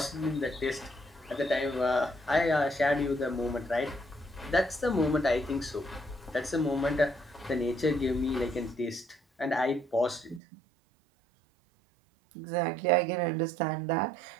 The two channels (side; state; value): left; drops out; at 10.4 s